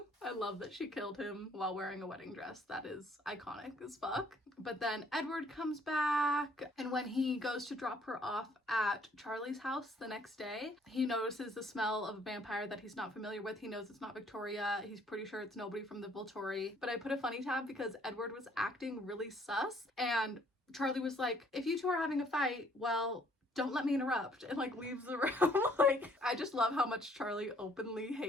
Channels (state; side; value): normal; both; correlation 0.62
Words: I love that she killed him while wearing a wedding dress. That is iconic as fuck. But then Edward comes back, and when he goes to drop her off at Charlie's house the next day, he notices the smell of a vampire that he's not familiar with. He knows it's not Victoria. He's pretty sure it's nobody from the Volturi. But I put a funny tab because Edward was acting really sus, and Charlie was like, if you two are having a fight, well, don't let me interrupt, and like leaves the room. Like, I just love how much Charlie openly